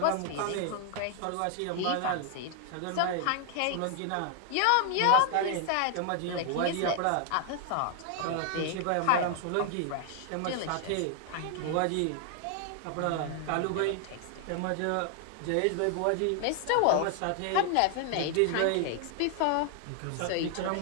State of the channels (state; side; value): different; both; correlation 0.00